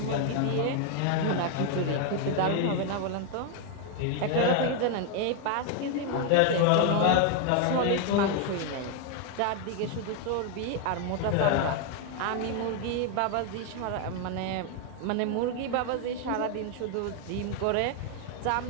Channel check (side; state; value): both; different; correlation 0.01